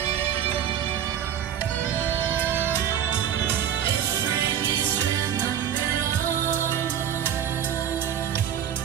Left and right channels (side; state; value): left; quieter; 9.5 dB